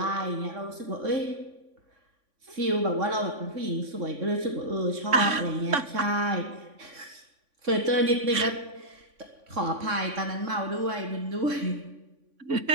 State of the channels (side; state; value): left; late; 3.5 ms